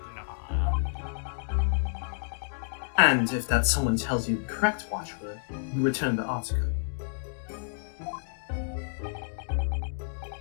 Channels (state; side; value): silent; right; digital silence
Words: And if that someone tells you the correct watchword, you return the article.